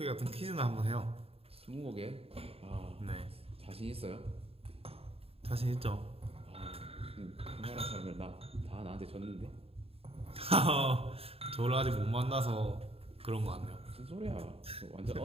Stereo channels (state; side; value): late; left; 0.28 ms